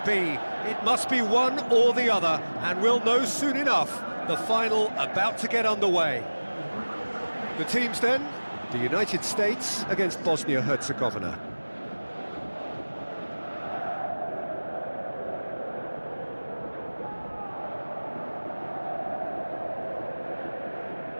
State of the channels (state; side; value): inverted; both; correlation -1.00